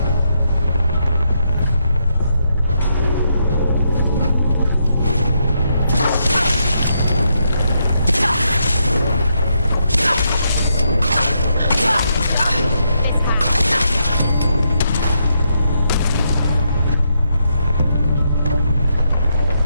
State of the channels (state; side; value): inverted; both; correlation -0.79